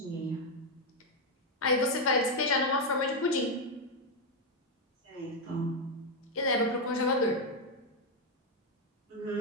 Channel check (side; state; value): both; normal; correlation 0.02